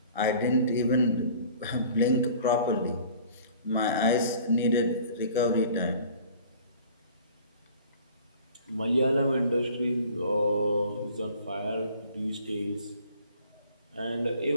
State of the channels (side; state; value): both; inverted; correlation -0.49